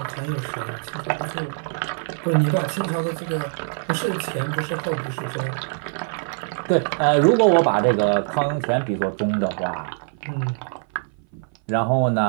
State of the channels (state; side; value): silent; left; 59 dB below the other